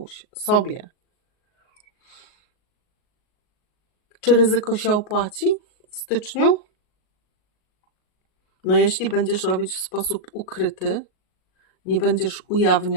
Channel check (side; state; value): right; late; 38 ms